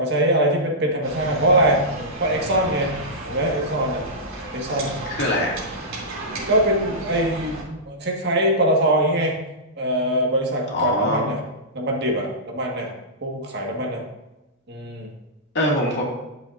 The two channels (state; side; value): normal; both; correlation -0.14